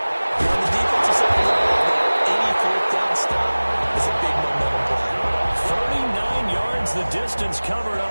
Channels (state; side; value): inverted; both; correlation -1.00